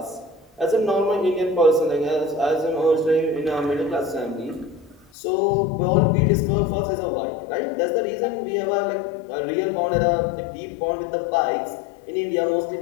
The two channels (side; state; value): right; drops out; at 5.1 s